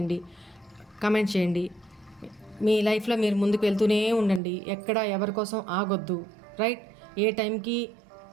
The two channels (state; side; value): drops out; left; at 4.4 s